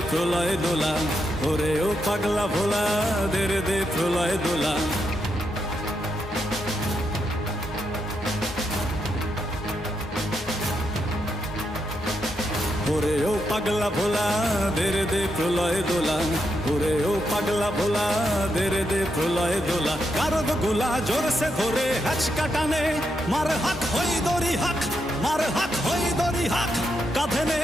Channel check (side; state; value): both; normal; correlation 0.82